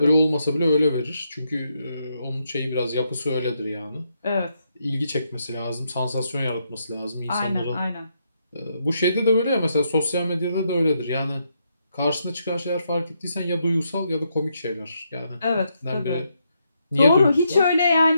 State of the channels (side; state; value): both; inverted; correlation -0.79